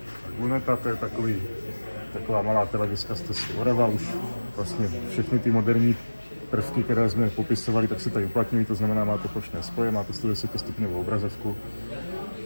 Luneta, to je taková malá televizka z Tesly Orava, už vlastně všechny ty moderní prvky, které jsme popisovali, tak se tady uplatňují, to znamená, má to plošné spoje, má to 110 stupňovou obrazovku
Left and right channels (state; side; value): inverted; both; correlation -1.00